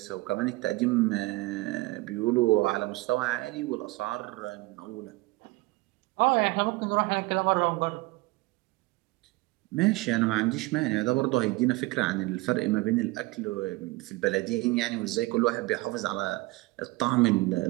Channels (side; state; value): left; quieter; 21.7 dB